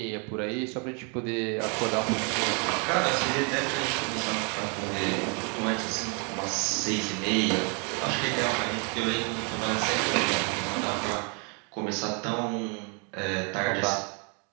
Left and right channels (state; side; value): quieter; left; 35.6 dB